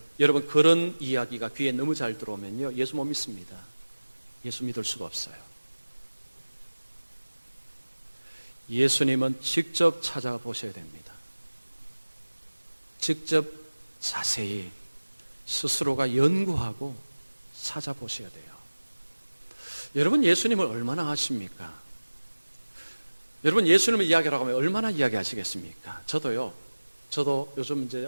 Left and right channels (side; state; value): both; inverted; correlation -1.00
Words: 여러분, 그런 이야기가 귀에 너무 잘 들어오면요, 예수 못 믿습니다. 예수 믿을 수가 없어요. 예수님은 직접 찾아보셔야 됩니다. 직접 자세히 스스로가 연구하고 찾아보셔야 돼요. 여러분, 예수님을 얼마나 아십니까? 여러분, 예수님을 이야기하라고 하면 얼마나 이야기하시겠습니까? 저도 요즘 이제